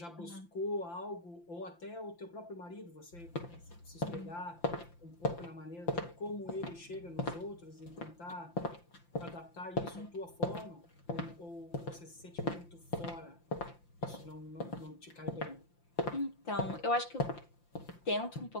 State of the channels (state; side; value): late; right; 5.8 ms